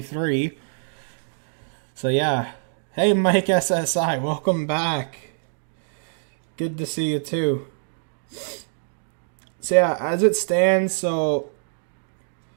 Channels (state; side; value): silent; left; digital silence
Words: So yeah. Hey Mike SSI, welcome back. Good to see you too. So yeah, as it stands, so